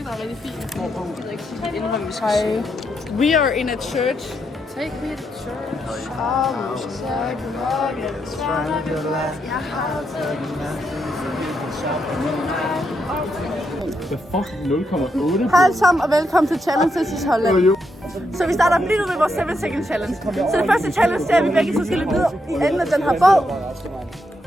der er rigtig fin. Hej. We are in a church. Take me to church. Hej alle sammen, og velkommen til Challenges i Holland. Så vi starter lige nu med vores 7 second challenge. Så det første challenge, det er, at vi begge så skal løbe ned i enden af den her båd.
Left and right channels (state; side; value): normal; both; correlation 0.80